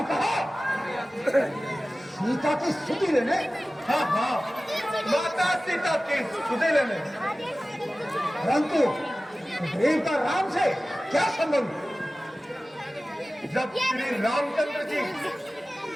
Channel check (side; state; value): both; normal; correlation 0.96